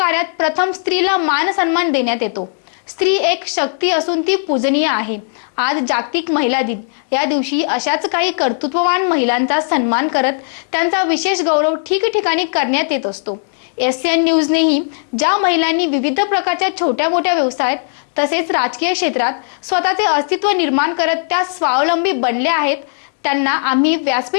प्रथम स्त्रीला मान सन्मान देण्यात येतो। स्त्री एक शक्ती असून ती पूजनीय आहे। आज जागतिक महिला दिन या दिवशी अशाच काही कर्तृत्ववान महिलांचा सन्मान करत त्यांचा विशेष गौरव ठिकठिकाणी करण्यात येत असतो। SN न्यूजनेही ज्या महिलांनी विविध प्रकारच्या छोट्या मोठ्या व्यवसायात तसेच राजकीय क्षेत्रात स्वतःचे अस्तित्व निर्माण करत त्या स्वावलंबी बनल्या आहेत, त्यांना आम्ही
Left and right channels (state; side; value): silent; right; digital silence